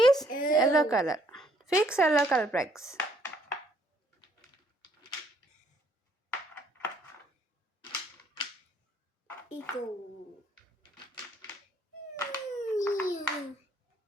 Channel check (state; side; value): normal; both; correlation 0.66